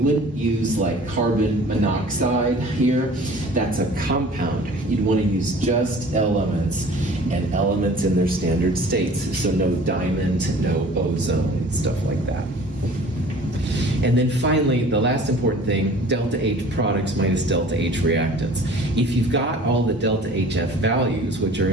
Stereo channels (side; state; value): both; normal; correlation 0.47